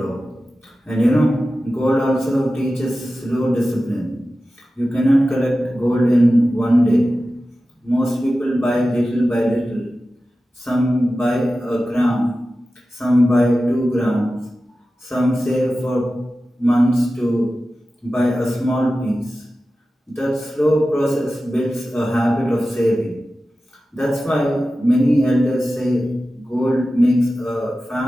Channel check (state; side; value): normal; both; correlation 0.94